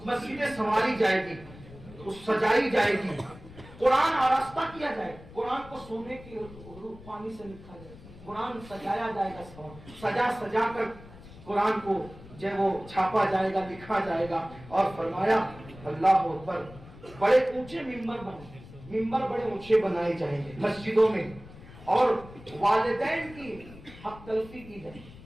مسجدیں سنواری جائے گی, سجائی جائے گی, قرآن آراستہ کیا جائے, قرآن کو سونے کی روح پانی سے لکھا جائے, قرآن سجایا جائے گا, سجا کر قرآن کو جو وہ چھاپا جائے گا, لکھا جائے گا. اور فرمایا اللہ اکبر, بڑے اونچے ممبر بڑے اونچے بنائے جائیں گے مسجدوں میں. اور والدین کی حق تلفی کی جائے.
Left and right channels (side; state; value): left; noise; rumble, 18 dB below the sound